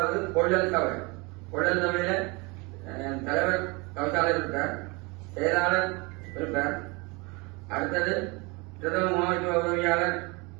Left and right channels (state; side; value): quieter; left; 27.3 dB